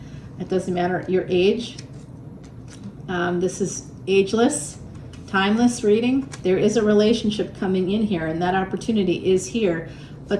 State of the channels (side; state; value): both; identical; correlation 1.00